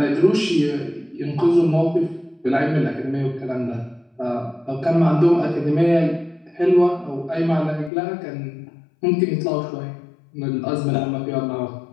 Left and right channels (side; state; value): right; drops out; at 7.9 s